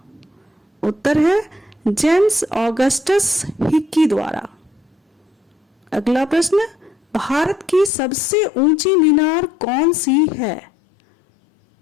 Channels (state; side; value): drops out; right; at 7.9 s